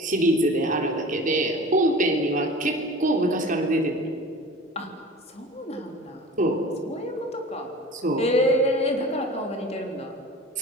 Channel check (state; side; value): normal; both; correlation 0.40